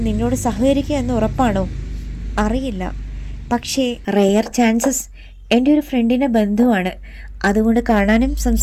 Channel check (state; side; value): identical; both; correlation 1.00